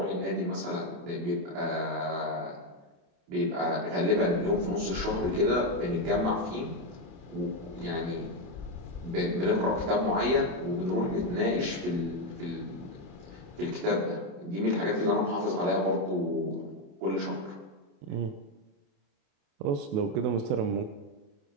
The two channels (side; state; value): left; late; 28 ms